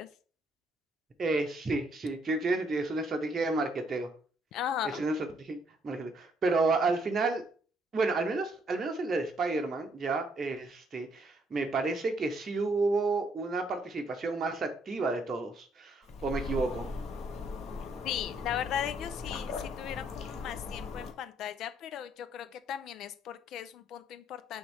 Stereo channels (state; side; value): normal; both; correlation 0.70